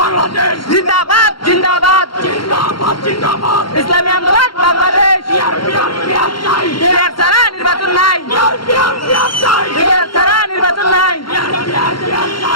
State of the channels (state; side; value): late; right; 0.73 ms